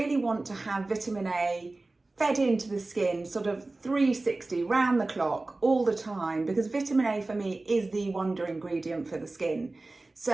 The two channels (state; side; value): quieter; left; 3.1 dB